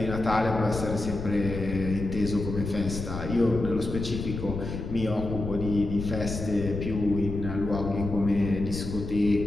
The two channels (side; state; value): left; noise; rumble, 6 dB below the sound